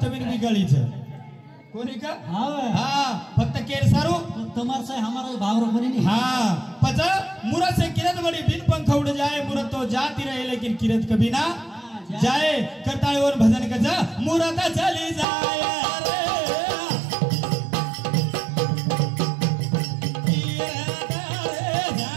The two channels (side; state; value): left; drops out; at 15.2 s